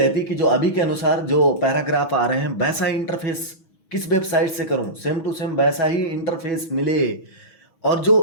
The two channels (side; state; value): right; late; 6.1 ms